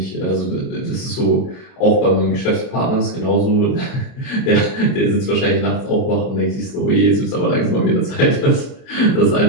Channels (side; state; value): right; late; 30 ms